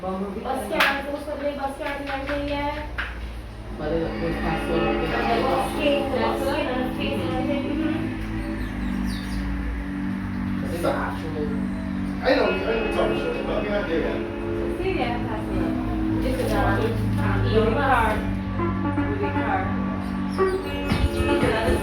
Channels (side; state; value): both; identical; correlation 1.00